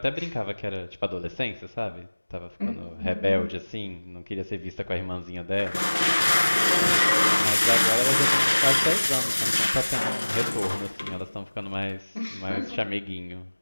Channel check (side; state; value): both; inverted; correlation -1.00